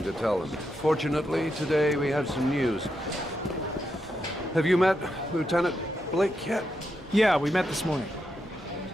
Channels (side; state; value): both; normal; correlation 0.83